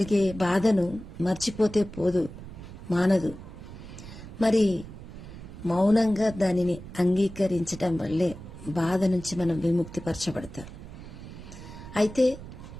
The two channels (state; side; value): noise; right; rumble, 13 dB below the sound